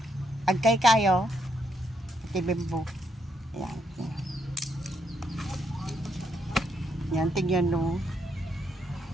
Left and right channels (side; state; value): both; normal; correlation 0.77